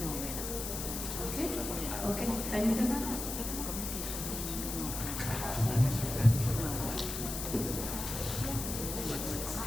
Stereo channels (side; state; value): left; noise; hiss, 5 dB below the sound